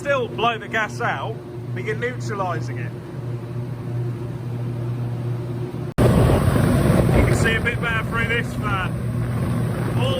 blow the gas out, but you're neutralising it. You can see a bit better through this fan.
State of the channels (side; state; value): both; identical; correlation 1.00